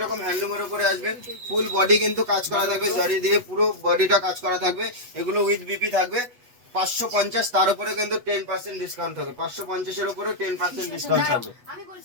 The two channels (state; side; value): late; left; 8.2 ms